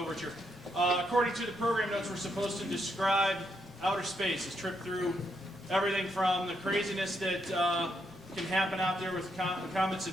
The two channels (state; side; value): noise; left; rumble, 26 dB below the sound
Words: According to the program notes, we're supposed to describe outer space, a trip through everything from the craziness that can happen out there with comets